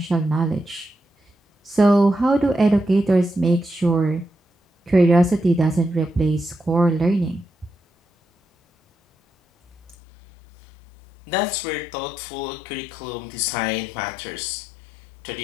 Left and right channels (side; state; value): right; drops out; at 10.0 s